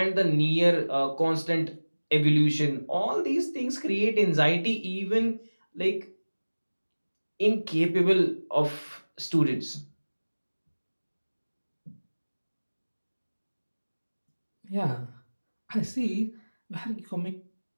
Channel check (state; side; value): inverted; both; correlation -1.00